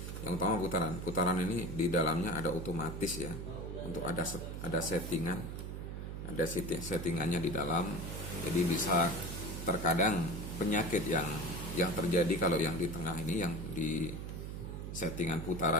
Yang utama putaran ini di dalamnya ada otomatis ya, untuk ada settingannya di dalam, jadi bisa terkadang penyakit yang terjadi kalau yang di tengah ini, yang di settingan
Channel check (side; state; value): right; noise; hum, 6 dB below the sound